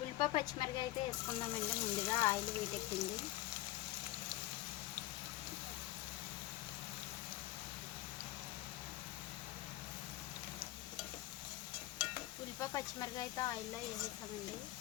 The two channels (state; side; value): quieter; right; 16.5 dB